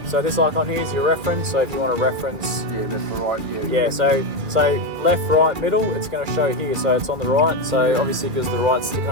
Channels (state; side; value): late; left; 2.3 ms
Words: So this icon here is your reference. So if you want to reference, so left, right, middle, it's going to show here. So it's on the right. So obviously because the right's sticking